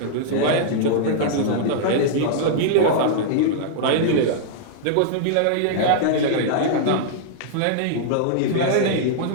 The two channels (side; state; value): both; different; correlation -0.01